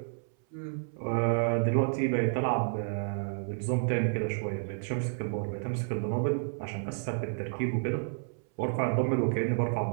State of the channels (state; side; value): silent; left; 57 dB below the other